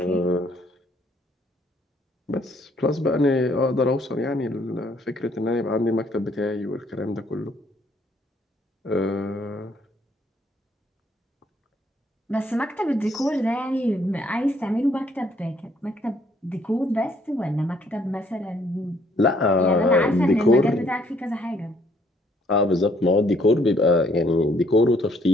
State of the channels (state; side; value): normal; both; correlation 0.66